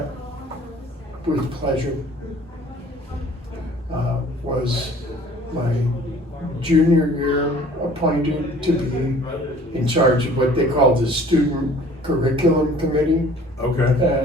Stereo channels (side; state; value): both; normal; correlation 0.51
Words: with pleasure. Was my junior year appointed to be in charge of what they called the Student Curriculum Committee. Okay.